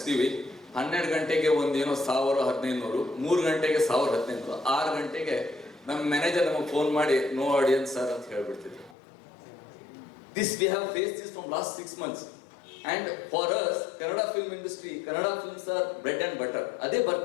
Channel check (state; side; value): drops out; right; at 9.0 s